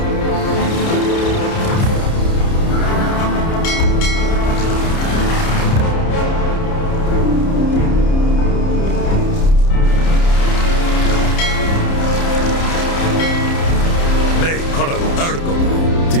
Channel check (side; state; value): right; late; 30 ms